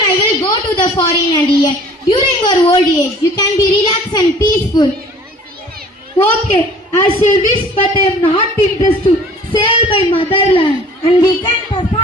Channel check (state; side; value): normal; both; correlation 0.50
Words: I will go to the foreign and earn. During your old age, you can be relaxed and peaceful. Okay, as you wish, but I am not interested to sell my motherland. And we can